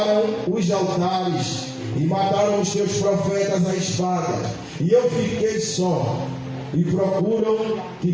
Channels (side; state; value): both; identical; correlation 1.00